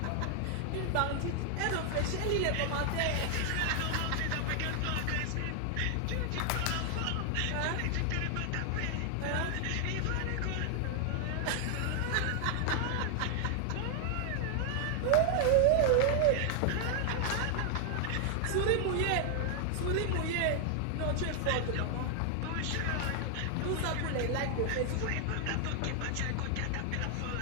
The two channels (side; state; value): both; different; correlation 0.00